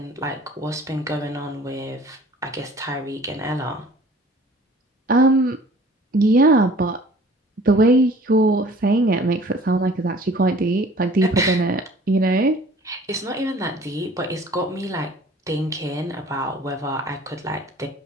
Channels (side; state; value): both; normal; correlation 0.50